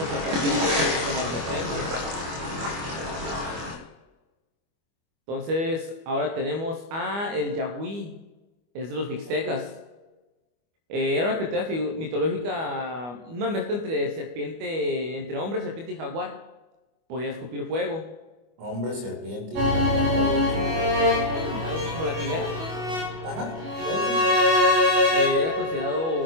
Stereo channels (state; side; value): late; left; 25 ms